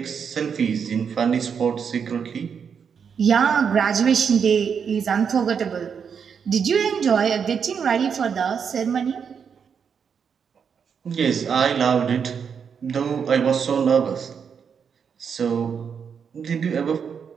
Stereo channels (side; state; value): left; quieter; 6.8 dB